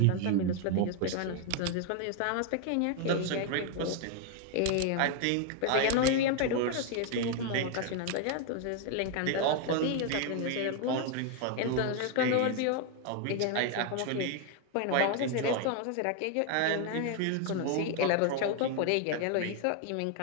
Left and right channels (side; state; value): both; different; correlation 0.00